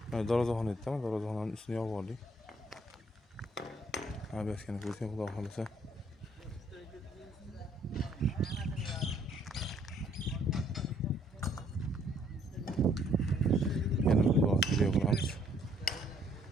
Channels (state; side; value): normal; both; correlation 0.65